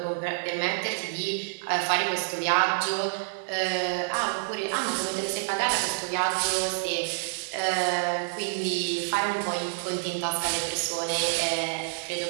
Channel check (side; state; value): left; silent; 58 dB below the other